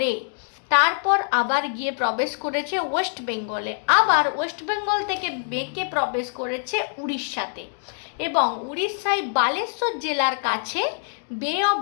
তারপর আবার গিয়ে প্রবেশ করেছে ওয়েস্ট বেঙ্গলে, আবার ওয়েস্ট বেঙ্গল থেকে বেঁকে প্রবেশ করেছে উড়িষ্যাতে, এবং উড়িষ্যায় বালেশ্বর জেলার কাছে বে অফ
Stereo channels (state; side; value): silent; right; 62 dB below the other